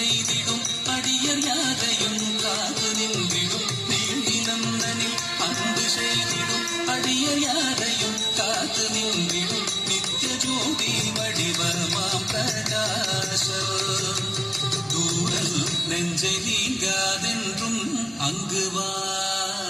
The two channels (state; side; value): identical; both; correlation 1.00